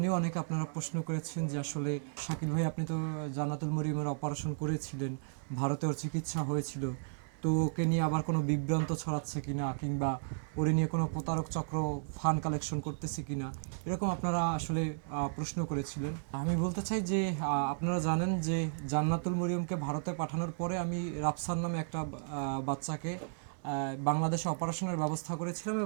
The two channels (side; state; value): left; silent; digital silence